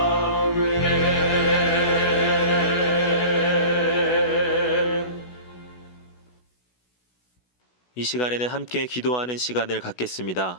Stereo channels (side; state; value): right; late; 16 ms